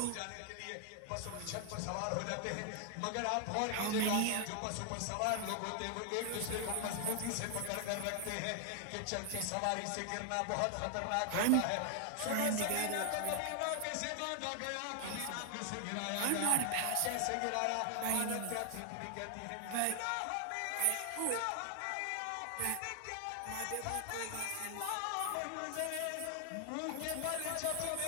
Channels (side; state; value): both; different; correlation 0.00